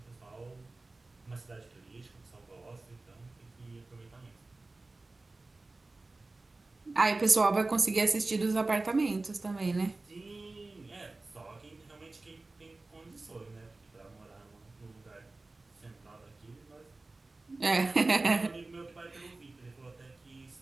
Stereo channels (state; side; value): quieter; left; 3.2 dB